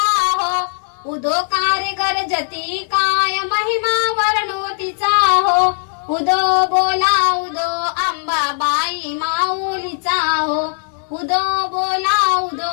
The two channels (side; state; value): right; silent; 67 dB below the other